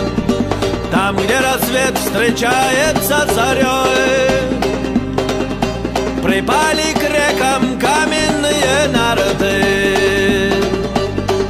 Там, где рассвет встречается с зарей, припали к рекам каменные нарты.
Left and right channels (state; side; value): identical; both; correlation 1.00